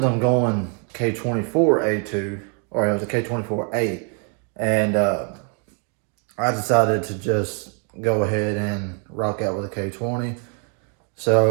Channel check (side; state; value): left; quieter; 39.4 dB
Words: on going K24A2, or it was a K24A, and I decided to just go ahead and rock out with a K20.